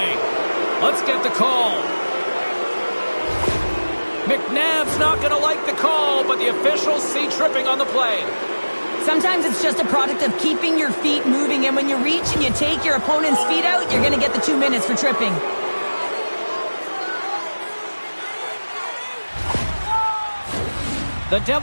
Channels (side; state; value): both; inverted; correlation -1.00